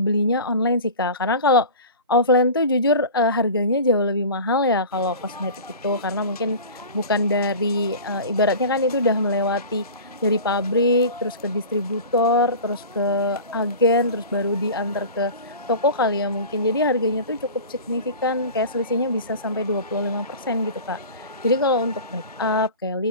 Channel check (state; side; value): inverted; both; correlation -0.35